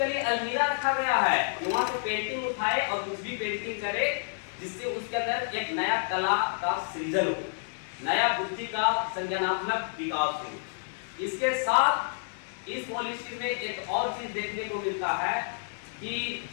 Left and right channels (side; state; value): right; silent; digital silence